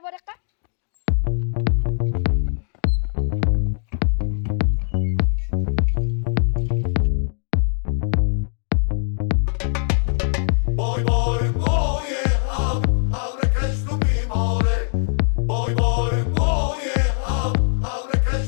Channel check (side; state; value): right; silent; digital silence